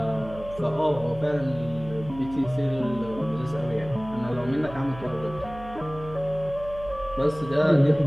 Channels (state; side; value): noise; right; hum, 15 dB below the sound